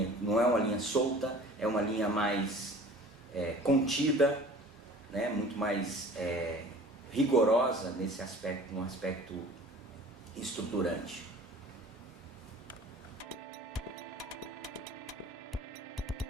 solta, é uma linha mais contida, né? Muito mais rigorosa nesse aspecto, num aspecto estruturante.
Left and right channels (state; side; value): normal; both; correlation 0.45